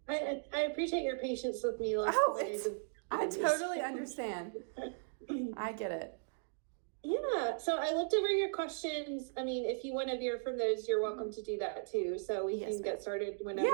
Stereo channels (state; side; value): silent; left; digital silence